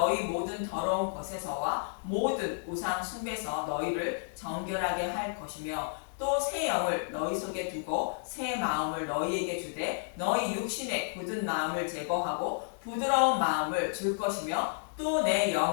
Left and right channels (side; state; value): right; silent; digital silence